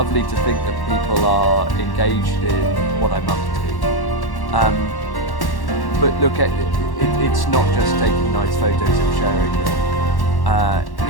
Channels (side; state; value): right; late; 1.1 ms